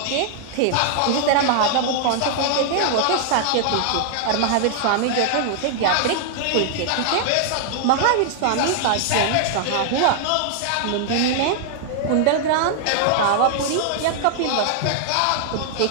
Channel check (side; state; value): both; different; correlation 0.00